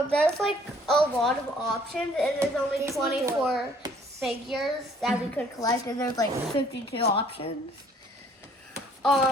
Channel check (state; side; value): normal; both; correlation 0.59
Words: there's like a lot of options, and there's only 24 figures that we could collect, and there's like 52 options.